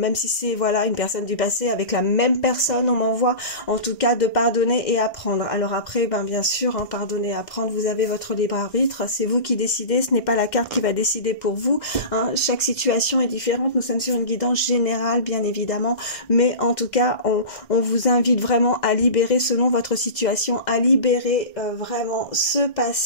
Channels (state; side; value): late; right; 1.6 ms